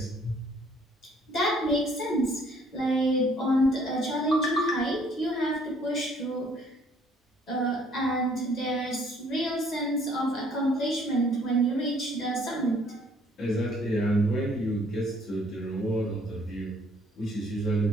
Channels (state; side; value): normal; both; correlation 0.61